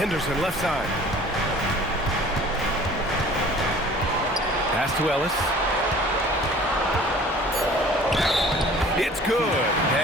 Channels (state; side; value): normal; both; correlation 0.48